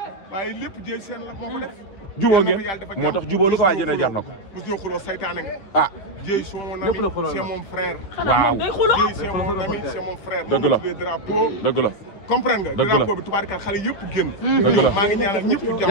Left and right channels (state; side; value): late; right; 9.8 ms